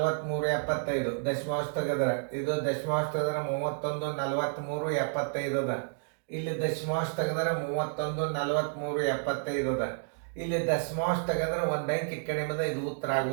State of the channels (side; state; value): left; silent; digital silence